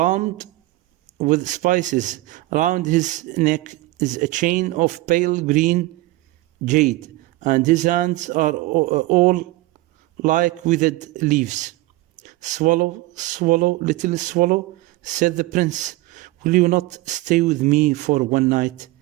with spices. Around his neck is a chain of pale green jade, and his hands are all like withered leaves. Swallow, swallow, little swallow, said the prince, will you not stay with me for one night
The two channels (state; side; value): quieter; left; 18.9 dB